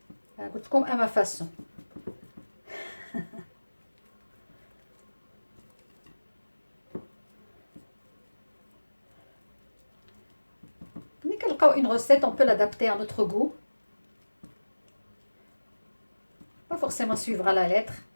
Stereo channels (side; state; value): both; inverted; correlation -1.00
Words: قلت لكم اما فاسون. ملي كنلقاو اون غوسيت اون بو لادابتي ا نوتر غو، با فورسيمون سويفر لا لتر